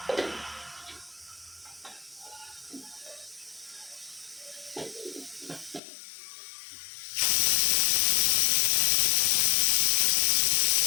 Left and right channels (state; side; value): drops out; right; at 5.8 s